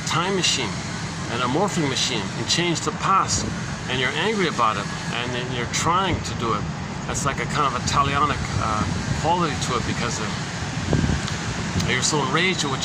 time machine and a morphing machine and change the past? And you're angry about it, and then you're trying to do it. That's like a kind of a talionic quality to it, because you're so enraged at what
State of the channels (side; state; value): both; identical; correlation 1.00